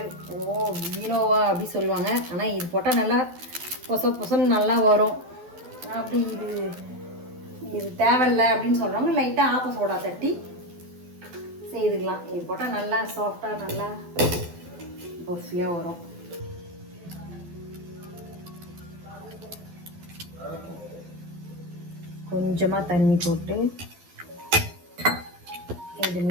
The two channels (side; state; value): left; late; 12 ms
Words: வீணோவா அப்படி சொல்லுவாங்க. ஆனால் இது போட்டால் நல்லா பொசன்னு நல்லா வரும். அப்படி இது தேவையில்லை அப்படின்னு சொல்கிறவங்க லைட்டாக ஆப்ப சோடா தட்டி செய்துக்கலாம். இது போட்டால் நல்லா சாஃப்டாக நல்லா பஃபியாக வரும். கொஞ்சமாக தண்ணி போட்டு இது